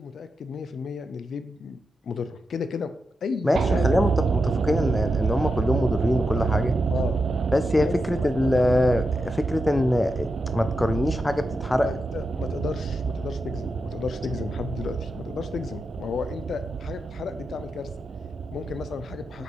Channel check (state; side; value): normal; both; correlation 0.87